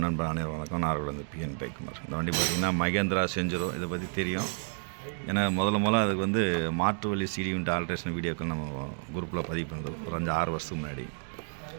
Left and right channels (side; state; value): left; silent; 57 dB below the other